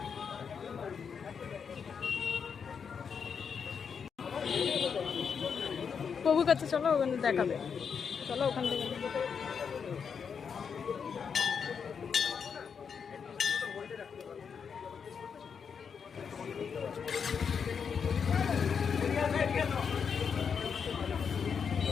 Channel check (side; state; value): right; quieter; 6.5 dB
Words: প্রভুর কাছে চলো, ওখানে দেখাবে। চলো ওখান থেকে।